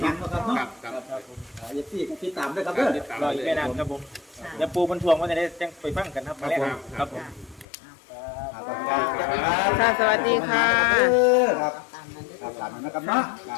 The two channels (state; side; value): drops out; right; at 7.7 s